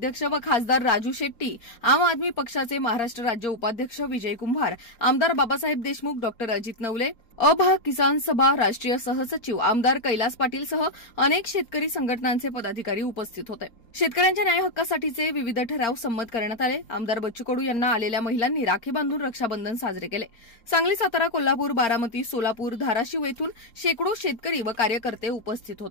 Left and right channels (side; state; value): right; late; 4.3 ms